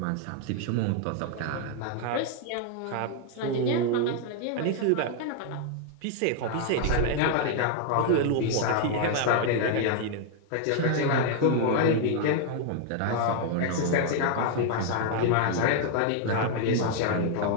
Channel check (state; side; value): different; both; correlation 0.00